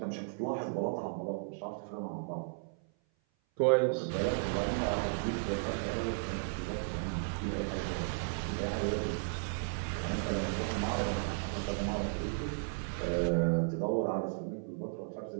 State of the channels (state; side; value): silent; left; 55 dB below the other